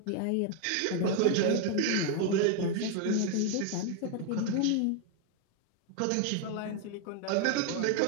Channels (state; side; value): different; both; correlation 0.01